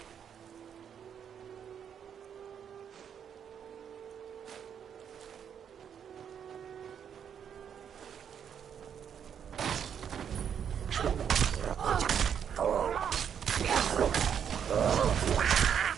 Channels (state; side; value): quieter; left; 8.1 dB